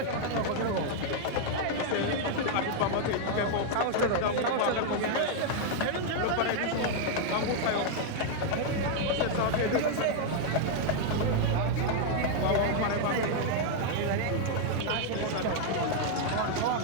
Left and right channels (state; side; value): different; both; correlation 0.00